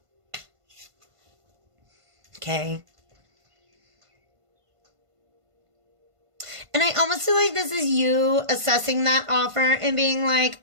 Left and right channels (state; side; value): late; left; 1.5 ms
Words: Okay. And I almost feel like this is you assessing that offer and being like,